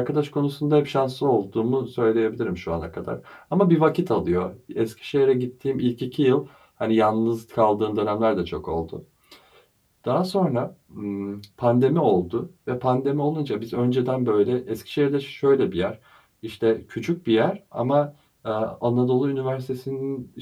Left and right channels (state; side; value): identical; both; correlation 1.00